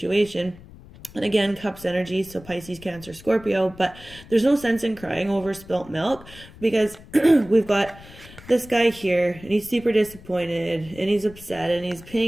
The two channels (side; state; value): left; noise; rumble, 20 dB below the sound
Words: and again, Cups energy, so Pisces, Cancer, Scorpio, but there's no sense in crying over spilt milk because we've got this guy here, and he's super disappointed, and he's upset, and he's